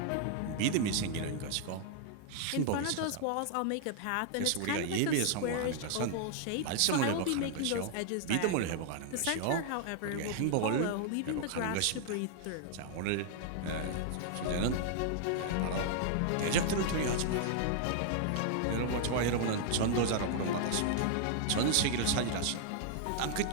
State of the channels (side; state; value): both; different; correlation 0.00